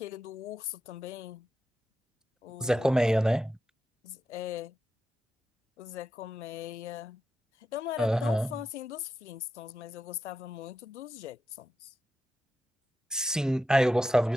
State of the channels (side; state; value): both; normal; correlation 0.88